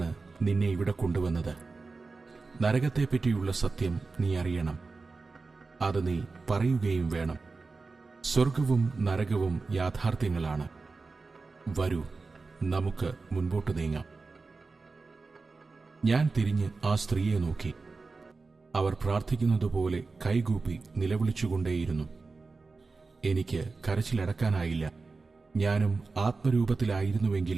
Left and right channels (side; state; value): left; quieter; 4.0 dB